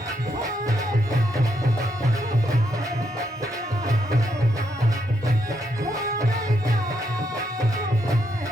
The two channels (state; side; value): normal; both; correlation 0.78